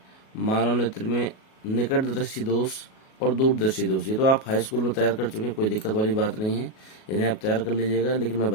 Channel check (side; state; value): right; late; 37 ms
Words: में निकट दृष्टि दोष और दूरदर्शी दोष। ये तो आप हाई स्कूल में तैयार कर चुके हैं, कोई दिक्कत वाली बात नहीं है, इन्हें आप तैयार कर लीजिएगा। लेकिन मैं